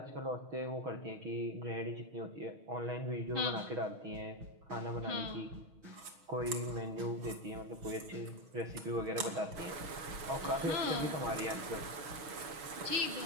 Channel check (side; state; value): left; late; 6.3 ms